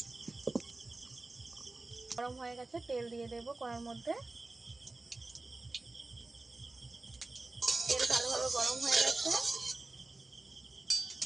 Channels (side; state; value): left; quieter; 3.2 dB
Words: গরম হয়ে গেছে, তেল দিয়ে দেব কড়ার মধ্যে। তেল ভালোভাবে গরম হয়ে